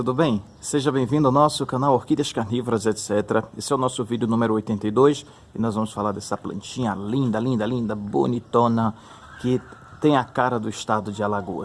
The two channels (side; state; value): both; identical; correlation 1.00